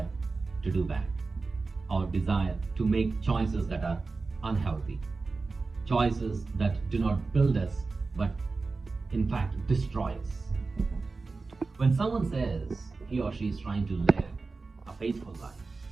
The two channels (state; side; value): quieter; left; 4.0 dB